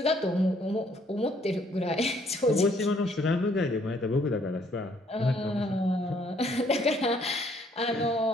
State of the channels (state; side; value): normal; both; correlation 0.65